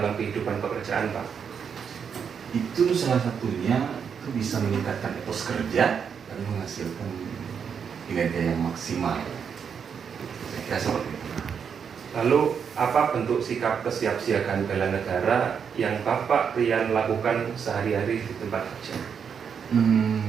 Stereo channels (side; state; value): left; quieter; 7.0 dB